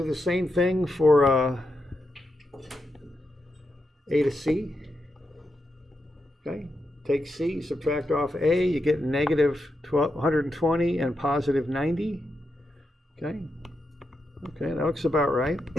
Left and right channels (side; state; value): both; normal; correlation 0.85